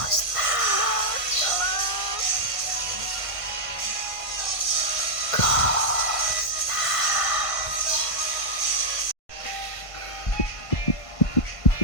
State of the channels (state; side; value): late; right; 1.5 ms